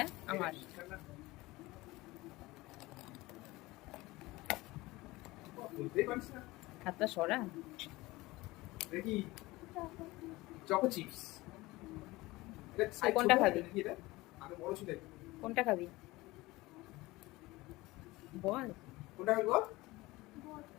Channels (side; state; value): right; quieter; 20.2 dB